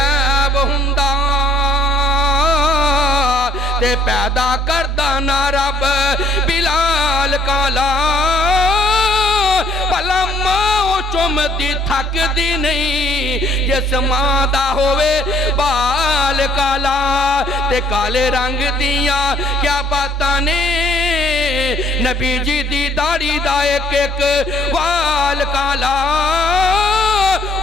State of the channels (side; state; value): both; normal; correlation 0.61